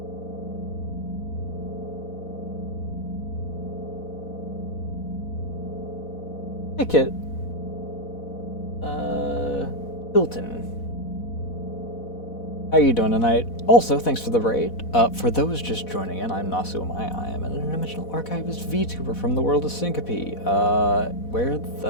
Hey, Kit. Hilton. How are you doing tonight? Also, thanks for the raid. For those just joining in, I'm Nasu Amaya. I am an interdimensional archivist VTuber from the world of Syncope. Where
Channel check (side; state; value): right; late; 4.1 ms